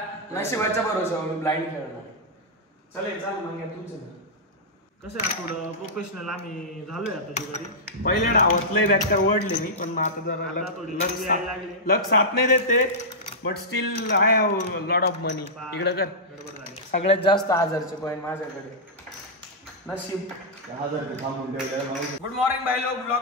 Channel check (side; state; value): both; normal; correlation -0.11